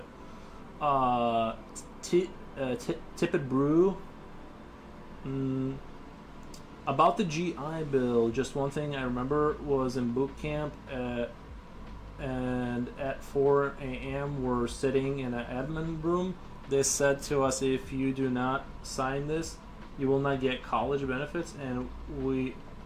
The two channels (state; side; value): identical; both; correlation 1.00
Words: Tippet Brew. About the GI Bill, just one thing I remember was in boot camp, and at 4 a.m. we're sitting in an admin room. They said to us, if you do not sign this, you will not get college benefits, and we're